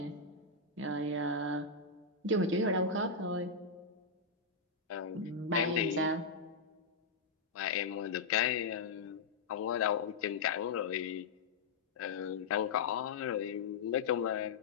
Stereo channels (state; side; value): quieter; right; 4.2 dB